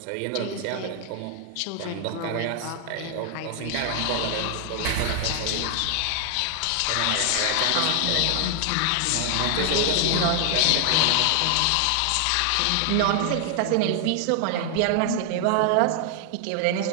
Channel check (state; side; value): different; both; correlation 0.00